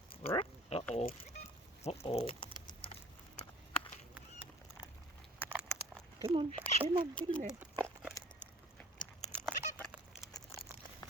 Uh-oh. Uh-oh. Come on, get in there.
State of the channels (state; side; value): normal; both; correlation 0.49